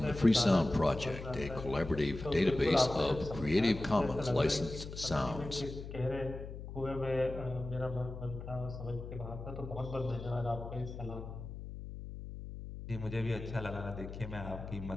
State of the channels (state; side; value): noise; left; hum, 10 dB below the sound